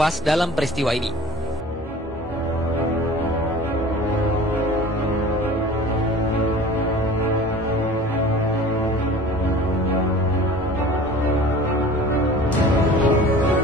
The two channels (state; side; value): normal; both; correlation 0.42